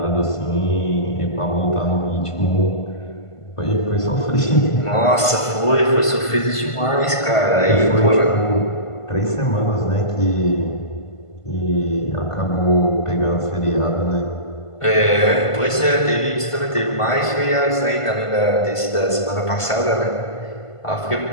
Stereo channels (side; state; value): right; late; 1.5 ms